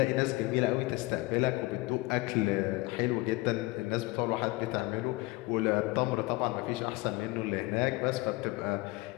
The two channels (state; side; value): quieter; right; 22.0 dB